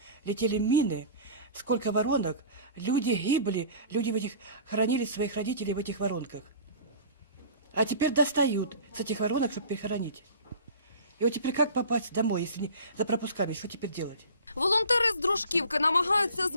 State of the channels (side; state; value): both; inverted; correlation -0.40